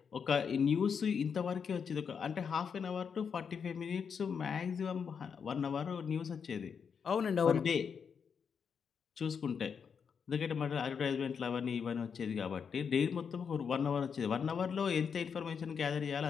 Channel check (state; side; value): quieter; right; 6.6 dB